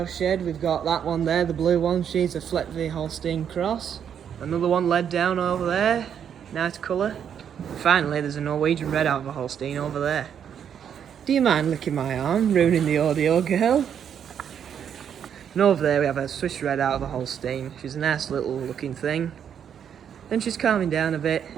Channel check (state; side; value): quieter; left; 8.4 dB